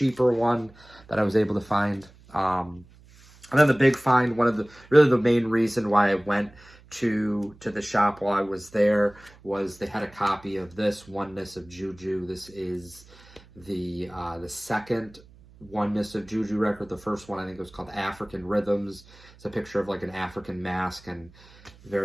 one that I was able to find. And then the big find, really the main reason why I went to the shop while I was there, was they had a copy of this Oneness of Juju. This is the second Oneness of Juju record. The first one I think was called African Rhythms. It's a picture of like an African mask and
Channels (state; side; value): noise; right; hum, 24 dB below the sound